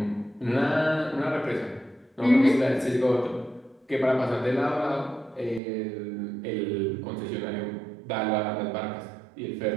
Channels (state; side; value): drops out; left; at 5.6 s